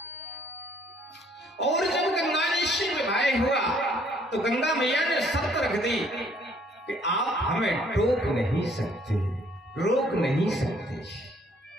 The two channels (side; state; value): both; normal; correlation 0.63